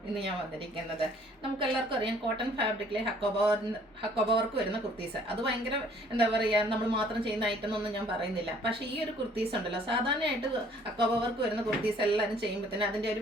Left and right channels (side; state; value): both; normal; correlation 0.58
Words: ഇന്ന് ഞാൻ വന്നിരിക്കുന്നത്. നമുക്കെല്ലാവർക്കും അറിയാം, കോട്ടൺ ഫാബ്രിക്കിലെ ഹക്കോബ വർക്ക് വരുന്ന കുർത്തീസ്. അത് ഭയങ്കര എന്താ പറയുക, നമ്മൾ മാത്രം ചെയ്യുന്ന ഐറ്റം എന്നൊന്നും ഞാൻ പറയുന്നില്ല. പക്ഷേ ഈ ഒരു കുർത്തീസ് ഉണ്ടല്ലോ, സാധാരണയായിട്ട് ഹക്കോബ വർക്ക് വരുന്ന കുർത്തീസ് എല്ലാവരും ചെയ്യുമ്പോഴത്തേനും അതിൻ്റെ